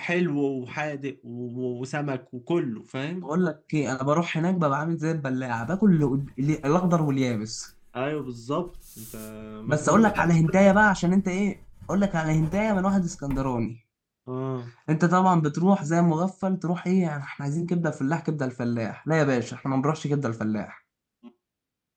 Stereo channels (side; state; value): both; identical; correlation 1.00